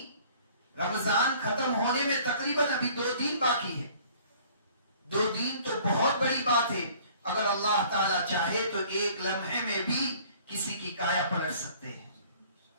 رمضان ختم ہونے میں تقریباً ابھی 2 دن باقی ہے. 2 دن تو بہت بڑی بات ہے. اگر اللہ تعالیٰ چاہے تو ایک لمحے میں بھی کسی کی کایا پلٹ سکتے ہیں.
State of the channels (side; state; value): both; inverted; correlation -0.53